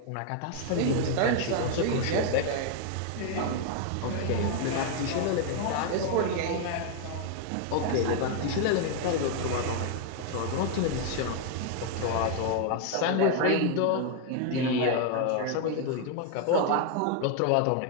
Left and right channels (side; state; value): both; different; correlation 0.00